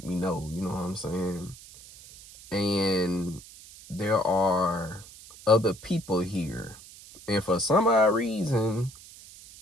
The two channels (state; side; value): noise; right; hiss, 19 dB below the sound